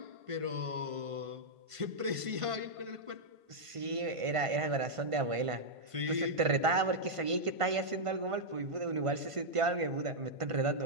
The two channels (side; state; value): left; late; 1.5 ms